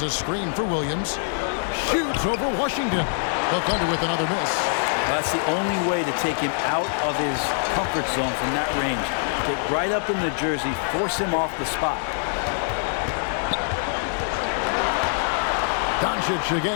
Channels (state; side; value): silent; right; 63 dB below the other